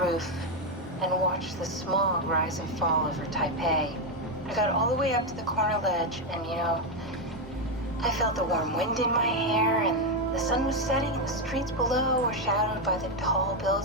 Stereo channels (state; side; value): normal; both; correlation 0.05